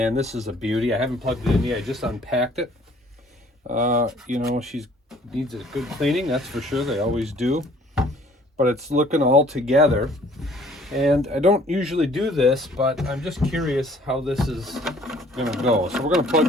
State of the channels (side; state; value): both; normal; correlation 0.57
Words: this is a beauty. I haven't plugged it in yet. I just unpacked it. You know, she needs a good cleaning, that's for sure. They always do. But it's looking all together. And I don't usually do this, but I'm just curious how this is going to go. So we're going to plug